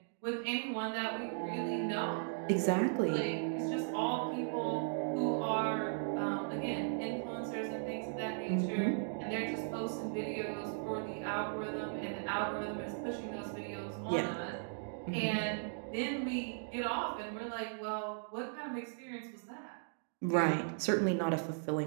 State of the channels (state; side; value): silent; left; digital silence